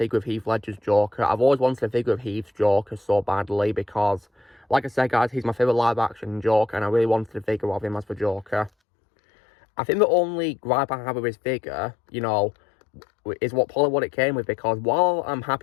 of Heath Ledger's Joker. I've always wanted a figure of Heath's Joker so badly because, like I said, guys, he's my favourite live-action Joker, and I really wanted a figure of him as the Joker. I think the only gripe I have with his figure, you know, is what it came with, because while I'm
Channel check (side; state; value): right; drops out; at 8.7 s